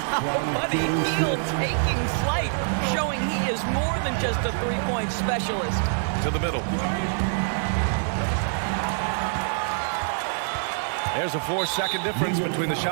Buddy Hield taking flight, showing he is more than just a three-point specialist. To the middle. There's a 4-second difference between the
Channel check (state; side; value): silent; left; 62 dB below the other